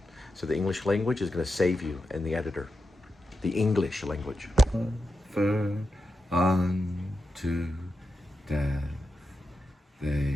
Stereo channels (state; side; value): normal; both; correlation 0.89